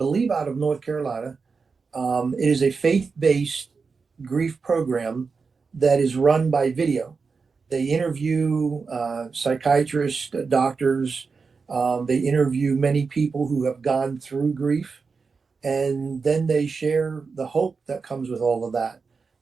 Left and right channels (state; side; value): quieter; left; 4.9 dB